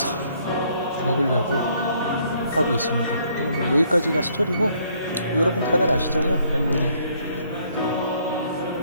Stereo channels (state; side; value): inverted; both; correlation -0.67